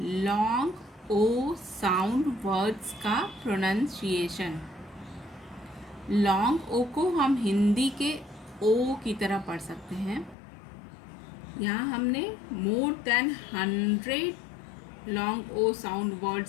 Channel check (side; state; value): right; drops out; at 10.4 s